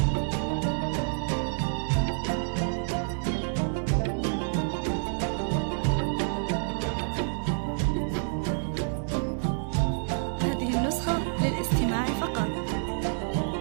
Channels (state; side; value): silent; left; digital silence